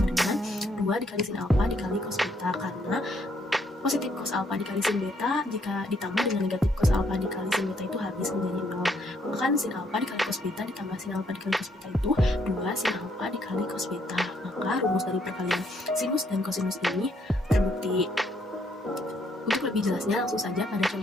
dengan 2 dikali sin alfa dikali cos beta, karena positif cos alfa dikali sin beta jika ditambah dengan negatif cos alfa dikali sin beta itu habis menjadi 0. Maka kan sin alfa dikali cos beta ditambah sin alfa dikali cos beta itu 2 sin alfa dikali cos beta. Maka rumus dari perkalian sinus dan kosinus ini terbukti. Untuk lebih jelasnya langsung saja pada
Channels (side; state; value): both; normal; correlation 0.71